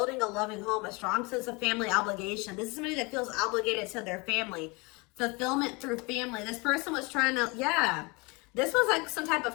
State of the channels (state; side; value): quieter; right; 27.4 dB